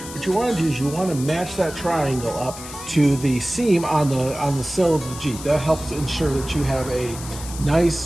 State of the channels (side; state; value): left; noise; hiss, 13 dB below the sound